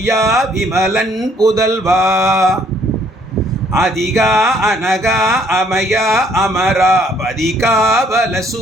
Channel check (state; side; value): normal; both; correlation 0.64